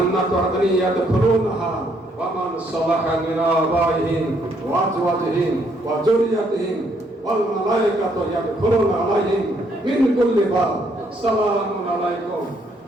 আদনি ইয়াদখুলুনহা ওয়া মান সালাহা মিন আবাইহিম ওয়া আজওয়াজিহিম ওয়া যুররিয়াতিহিম ওয়াল মালায়েকাতু ইয়াদখুলুনা আলাইহিম মিন কুল্লি বাব সালামুন আলাইকুম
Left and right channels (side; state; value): both; normal; correlation 0.70